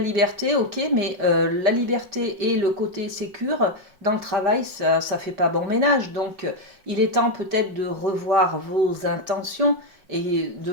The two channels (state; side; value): late; left; 5.4 ms